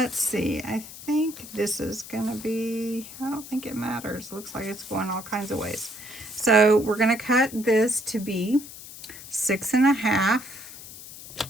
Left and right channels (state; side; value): noise; left; hiss, 14 dB below the sound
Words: see. I think this is going to be, I don't think it matters. It looks like it's going all kinds of ways. So we're going to cut this to be 6 1/2.